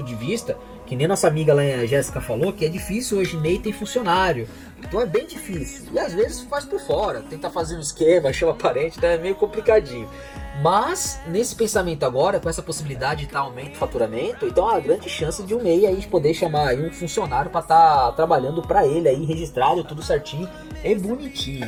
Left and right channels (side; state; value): both; identical; correlation 1.00